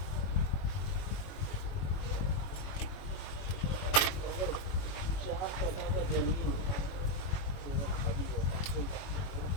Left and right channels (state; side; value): late; right; 21 ms